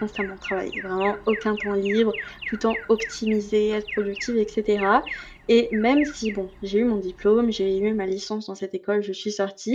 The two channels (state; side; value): identical; both; correlation 1.00